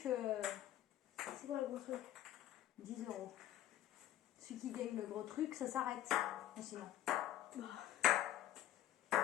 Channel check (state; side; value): quieter; right; 12.7 dB